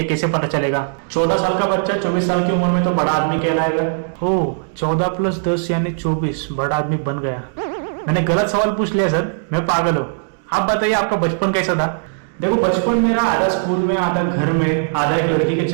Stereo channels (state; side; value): silent; left; digital silence